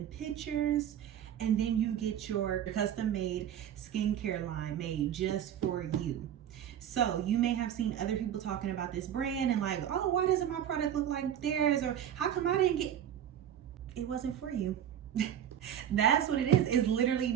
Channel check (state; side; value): quieter; left; 9.9 dB